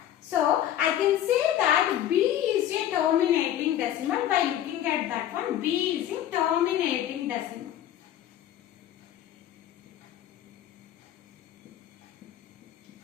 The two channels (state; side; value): quieter; right; 11.5 dB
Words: So, I can say that B is a terminating decimal. By looking at that one, B is a terminating decimal.